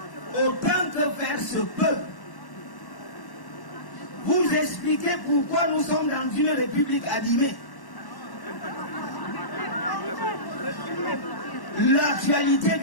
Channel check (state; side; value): late; right; 1.1 ms